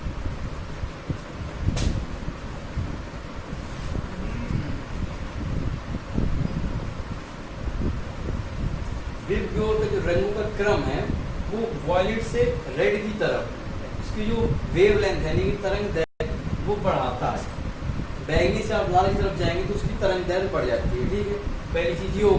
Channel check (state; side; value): identical; both; correlation 1.00